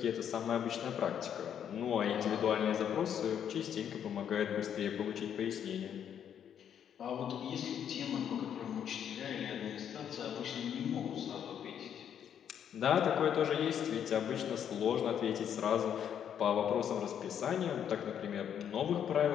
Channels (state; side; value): quieter; right; 8.9 dB